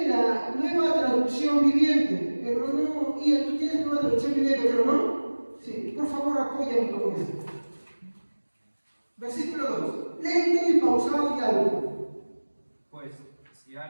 la nueva traducción viviente. Hermano Ian, ¿tú tienes nueva traducción viviente, hermano? Sí, por favor apóyame con esto. Versículo 2. Lento y pausado y alto. Pues, si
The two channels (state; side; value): inverted; both; correlation -1.00